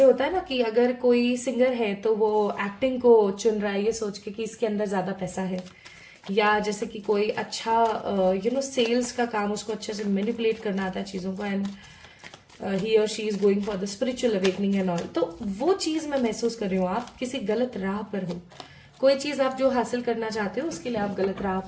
होता है ना कि अगर कोई सिंगर है तो वो एक्टिंग को चुन रहा है ये सोच के कि इसके अंदर ज्यादा पैसा है, या जैसे कि कोई अच्छा सेल्स का काम, उसको अच्छे से मैनिपुलेट करना आता है चीजों को, एंड ही और she is going for the spiritual awakening and all. तो वो चीज मैं महसूस कर रही हूँ, आप किसी गलत राह पर हो। कोई चीज आप जो हासिल करना चाहते हो उसके लिए आप गलत राह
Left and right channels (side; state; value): both; identical; correlation 1.00